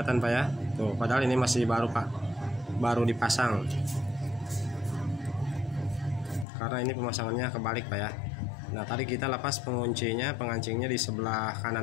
Pak ya. Tuh, padahal ini masih baru Pak. Baru dipasang. Karena ini pemasangannya kebalik Pak ya. Nah, tadi kita lepas pengancingnya di sebelah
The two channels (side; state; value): right; drops out; at 6.5 s